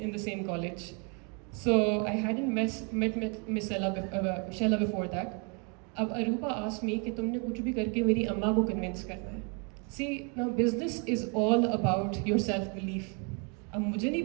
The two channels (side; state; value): left; quieter; 34.9 dB